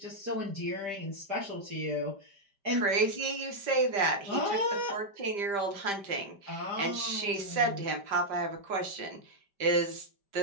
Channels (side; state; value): left; late; 5.1 ms